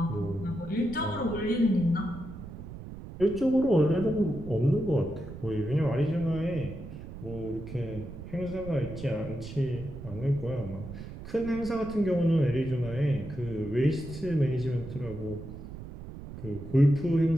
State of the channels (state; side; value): noise; right; rumble, 12 dB below the sound